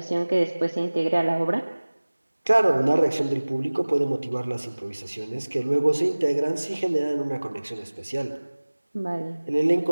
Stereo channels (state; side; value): inverted; both; correlation -1.00